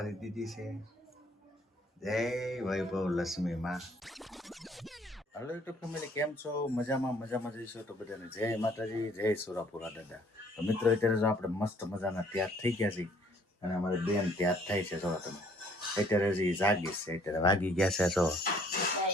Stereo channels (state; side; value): normal; both; correlation 0.61